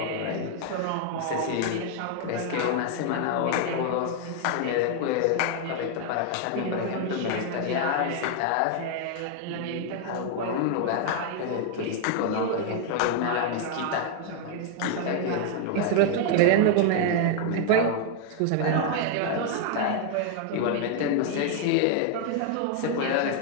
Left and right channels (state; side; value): different; both; correlation 0.00